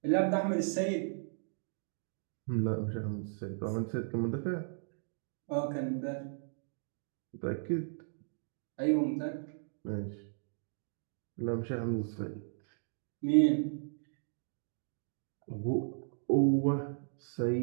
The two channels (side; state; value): left; silent; digital silence